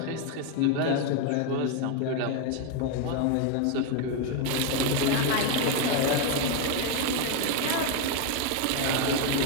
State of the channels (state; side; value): different; both; correlation 0.02